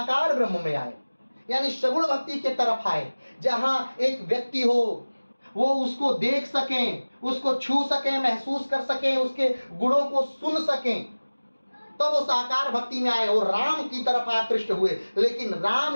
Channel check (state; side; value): inverted; both; correlation -1.00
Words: ब्रह्म में आए, यानी सगुण भक्ति के तरफ आए, जहां एक व्यक्ति हो, वो उसको देख सकें, उसको छू सकें, महसूस कर सकें, उसके गुणों को सुन सकें, तो वो साकार भक्ति में आए और राम की तरफ आकृष्ट हुए। लेकिन राम